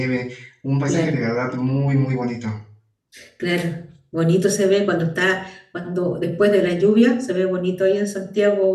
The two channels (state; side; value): identical; both; correlation 1.00